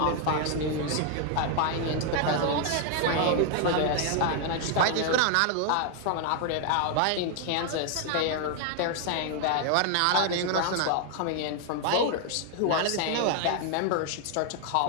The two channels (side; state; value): both; different; correlation 0.00